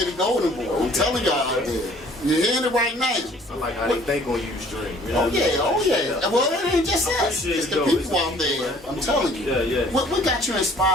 be the golden boy. I'm telling y'all out there. You're hearing it right now. I like how they think on Ustream. You know oh yeah. Well, it ain't just us. It's the people out there. I'm telling you. Yeah. What got you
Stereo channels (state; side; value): normal; both; correlation 0.55